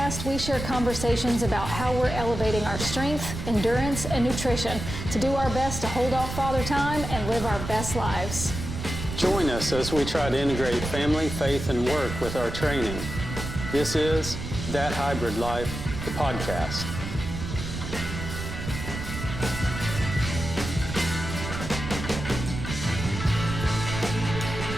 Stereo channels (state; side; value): noise; right; rumble, 6 dB below the sound